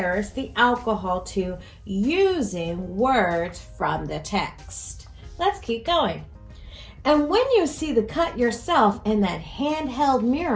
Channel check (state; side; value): identical; both; correlation 1.00